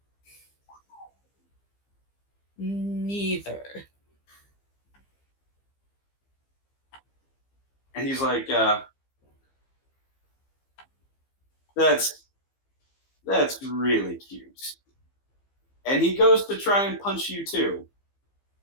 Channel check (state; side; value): late; right; 15 ms